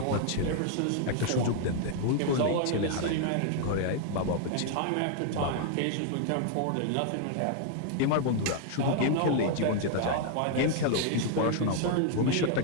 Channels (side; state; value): both; different; correlation 0.00